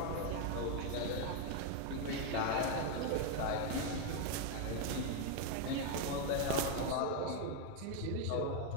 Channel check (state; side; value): different; both; correlation 0.01